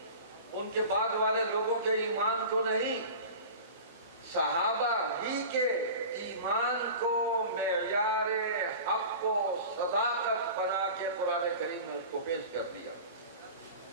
ان کے بعد والے لوگوں کے ایمان کو نہیں، صحابہ ہی کے ایمان کو معیار حق و صداقت بنا کے قرآن کریم نے اس کو پیش کر دیا۔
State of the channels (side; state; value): both; inverted; correlation -0.35